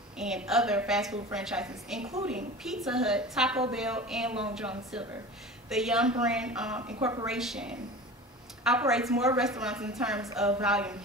and other fast food franchises, including Pizza Hut, Taco Bell, and Long John Silver. The Young brand incorporation operates more restaurants in terms of volume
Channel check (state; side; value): normal; both; correlation 0.35